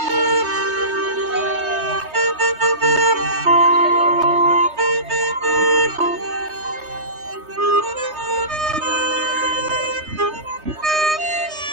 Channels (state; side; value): late; left; 3.2 ms